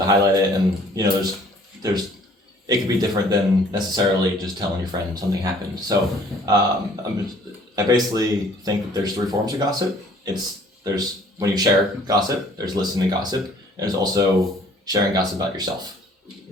highlight it, and there's it could be different than necessarily just telling your friend something happened. So I basically think that there's three forms of gossip. There's when you share gossip, there's listening to gossip, and there's also sharing gossip about yourself.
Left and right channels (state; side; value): normal; both; correlation 0.56